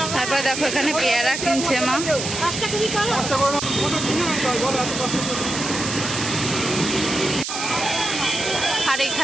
তারপরে দেখো এখানে পেয়ারা কিনছে মা। আর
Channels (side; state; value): right; noise; hiss, 5 dB below the sound